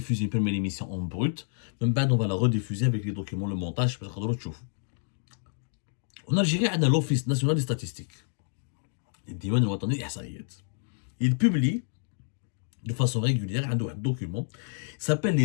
une première émission en brut, même on va la rediffuser avec les documents, le montage, parce que en Algérie, on a l'Office national des statistiques. Il publie de façon régulière un document qui s'appelle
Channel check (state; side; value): silent; right; digital silence